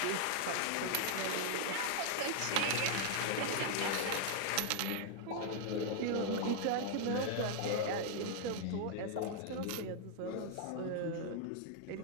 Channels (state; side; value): different; both; correlation 0.00